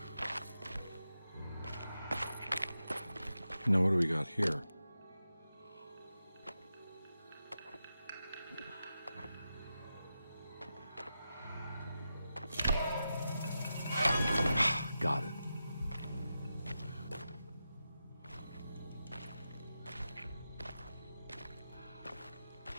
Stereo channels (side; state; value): both; inverted; correlation -0.90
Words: Now, what do we got here? Got it.